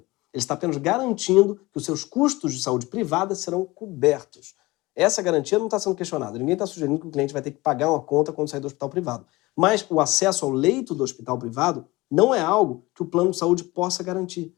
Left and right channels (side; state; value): right; quieter; 21.1 dB